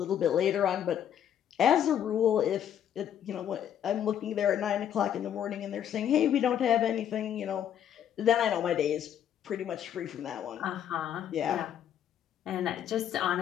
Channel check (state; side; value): quieter; right; 9.8 dB